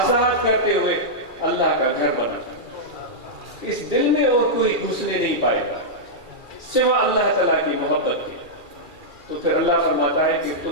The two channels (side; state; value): left; late; 2.4 ms